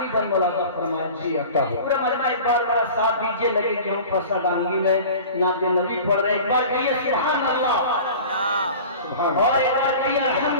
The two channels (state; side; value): inverted; both; correlation -0.39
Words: बंद मुलाज़ा फरमाए। जी अता हो। पूरा मजमा एक बार बड़ा साथ दीजिए, लगे कि हम फसा डांगी में नाते नबी पढ़ रहे। एक बार कहिए सुभान अल्लाह, और एक बार कहिए